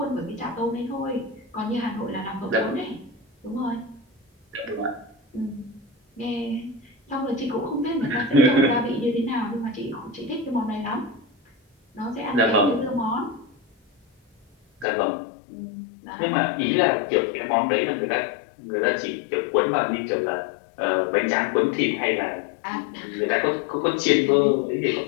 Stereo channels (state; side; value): drops out; right; at 14.9 s